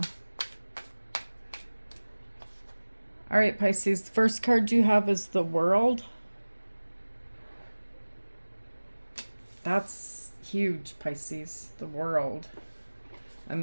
All right, Pisces, the first card you have is the World. That's huge, Pisces, the World. A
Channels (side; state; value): both; inverted; correlation -1.00